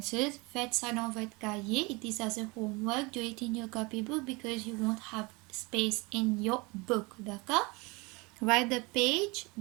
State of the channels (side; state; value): left; quieter; 26.5 dB